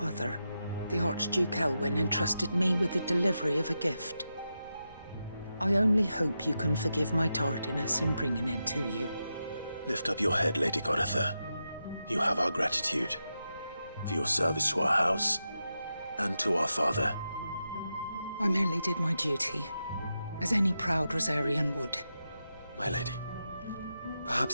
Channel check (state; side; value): inverted; both; correlation -0.88